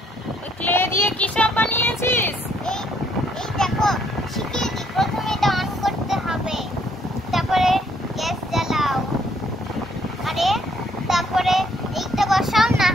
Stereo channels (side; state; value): both; normal; correlation 0.68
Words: ক্লে দিয়ে কি সব বানিয়েছিস? এই দেখো শিখিয়ে দি। প্রথমে এটা অন করতে হবে, তারপরে গ্যাস জ্বালাও, আরে তারপরে এইটা বসাও, না